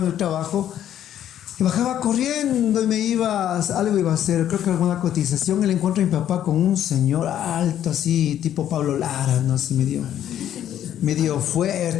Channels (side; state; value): right; quieter; 10.9 dB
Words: en el trabajo, y bajaba corriendo y me iba, algo iba a hacer, creo que alguna cotización, y le encuentro a mi papá con un señor alto, así, tipo Pablo Lara, ¿no? Así medio